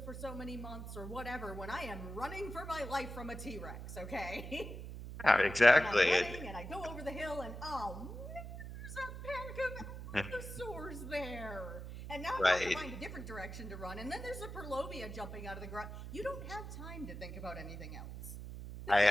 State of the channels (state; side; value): noise; right; hum, 9 dB below the sound